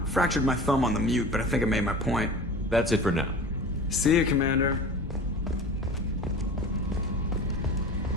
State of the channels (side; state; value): both; normal; correlation 0.36